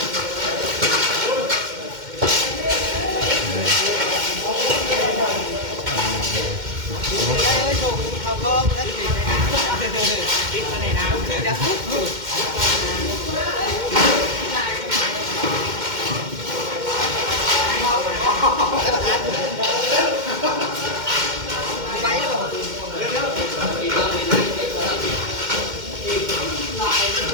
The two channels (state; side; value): late; left; 2.1 ms